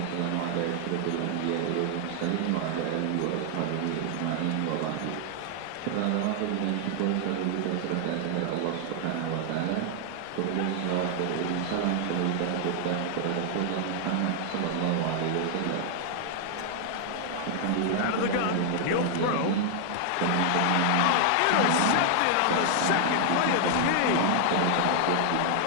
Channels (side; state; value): both; different; correlation 0.00